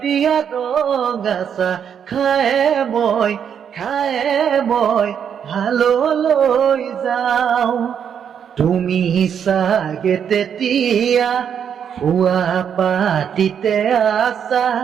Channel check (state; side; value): quieter; left; 8.0 dB